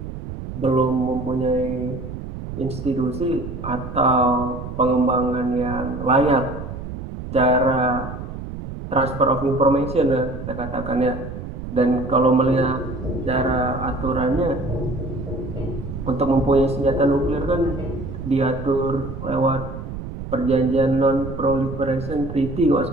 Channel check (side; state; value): right; noise; rumble, 9 dB below the sound